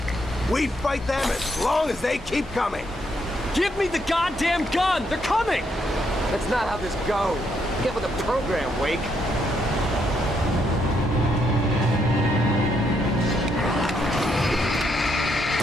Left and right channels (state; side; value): normal; both; correlation 0.75